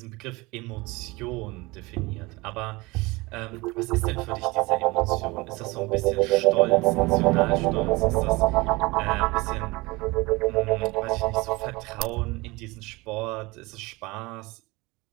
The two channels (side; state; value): left; quieter; 23.2 dB